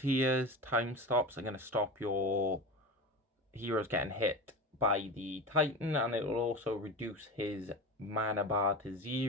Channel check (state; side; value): normal; both; correlation 0.27